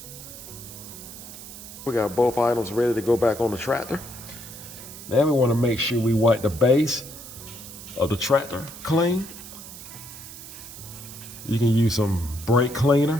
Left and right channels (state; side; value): noise; right; hiss, 14 dB below the sound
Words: We got both items ready to go back on the tractor. Now we want to make sure we wipe the base of the tractor clean. You can use some brake